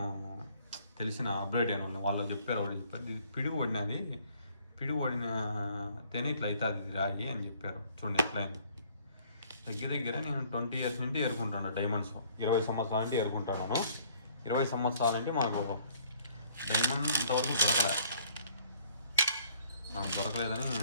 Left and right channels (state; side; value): inverted; both; correlation -0.60